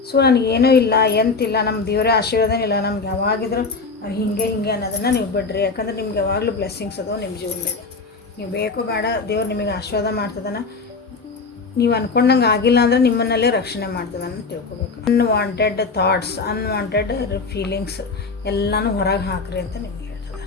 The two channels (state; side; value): quieter; right; 4.3 dB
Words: So ನನಗೇನೂ ಇಲ್ಲ, ಎಂತಿಲ್ಲ, ನಮ್ಮ ದೇವರ ಆಶೀರ್ವಾದ ಇಲ್ಲ, ನಮ್ಗೆ ಯಾವಾಗಿದ್ರು ಹಿಂಗೆ ಅನ್ನೋದನ್ನು ನೀವು ಬಿಡ್ರಿ. ಯಾಕಂದ್ರೆ ನಿಮ್ಗೆ ಯಾವಾಗಲೂ ಬ್ಲೆಸ್ಸಿಂಗ್ಸ್ ಅದಾವೆ ನಿಮ್ಮ ಜೀವನದಾಗ. ನೀವು ಬೇಕೋ ಬೇಡ, ದೇವ್ರು ನಿಮಗೆ ಆಶೀರ್ವಾದ ಮಾಡ್ತದನ. ನೀವು ಅಂದ್ಕೊಂಡಂಗೆ ಆಗಿಲ್ಲ ಅಂದರೆ ನಿಮ್ಮನ್ನಲ್ಲೇ ರಕ್ಷಣೆ ಮಾಡ್ತದೆ ಅಂತ ತಿಳ್ಕೊಬೇಕು. ಅನ್ವಾಂಟೆಡ್ ಥಾಟ್ಸ್, ಅನ್ವಾಂಟೆಡ್ ಫೀಲಿಂಗ್ಸ್ ಎಲ್ಲನೂ ಹೊರಗೆ ಹಾಕ್ರಿ ಅಂತ ನಿಮ್ಗೆ